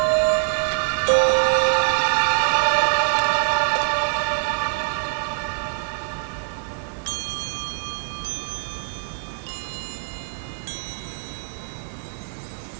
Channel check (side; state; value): left; silent; digital silence